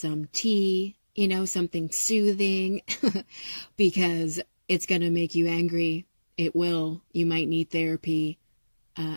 tea, something soothing, because it's going to make you angry. It will. You might need therapy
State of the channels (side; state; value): both; inverted; correlation -1.00